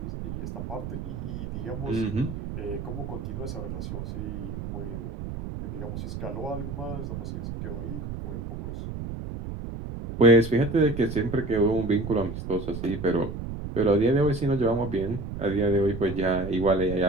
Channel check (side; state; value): right; noise; rumble, 7 dB below the sound